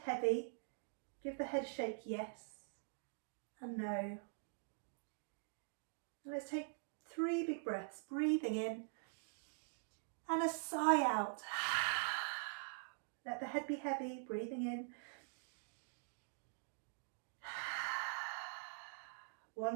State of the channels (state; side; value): silent; left; digital silence